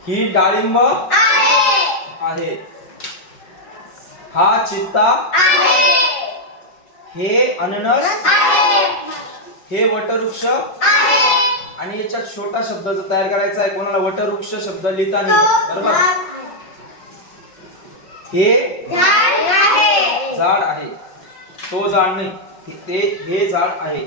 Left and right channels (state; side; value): late; right; 5.4 ms